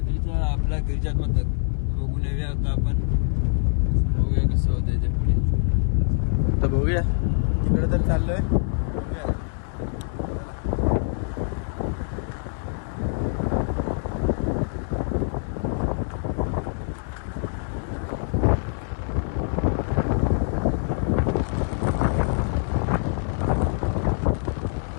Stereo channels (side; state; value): right; silent; digital silence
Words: आपला गिरिजात्मक. बघून येऊया आता आपण. बघूया कसं होतंय ते पुढे. तर बघूया, तिकडे तर चाललोय.